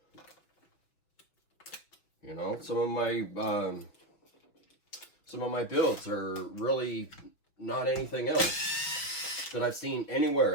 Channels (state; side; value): late; right; 6.1 ms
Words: You know, some of my builds are really not anything else that I've seen anywhere